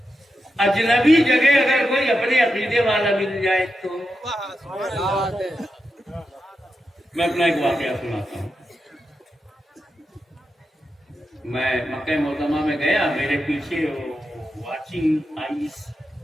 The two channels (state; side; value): normal; both; correlation 0.88